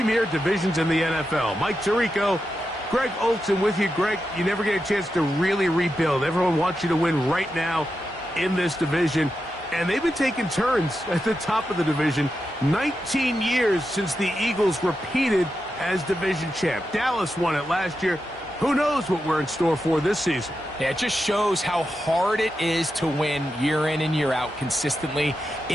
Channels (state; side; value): normal; both; correlation 0.88